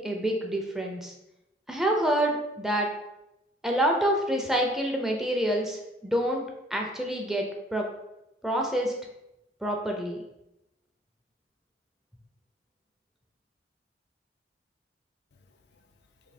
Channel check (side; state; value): both; normal; correlation 0.57